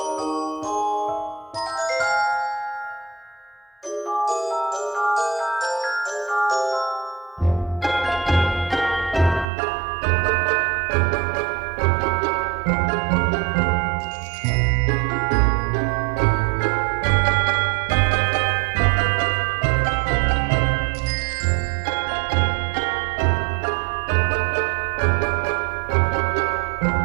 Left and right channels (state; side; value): drops out; left; at 9.5 s